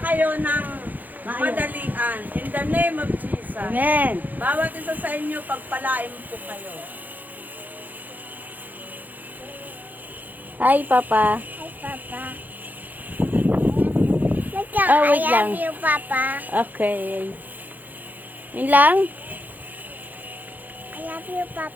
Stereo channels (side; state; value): left; late; 0.084 ms